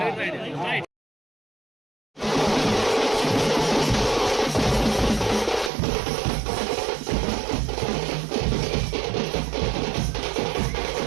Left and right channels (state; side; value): drops out; left; at 5.7 s